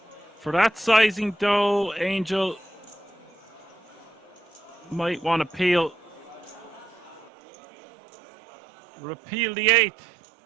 For that sizing though, Angel, might want to repeal the 8,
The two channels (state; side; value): drops out; left; at 7.3 s